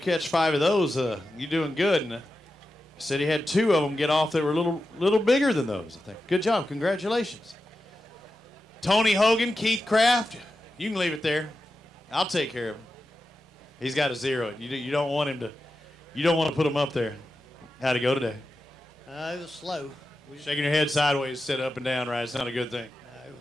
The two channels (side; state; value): both; normal; correlation 0.91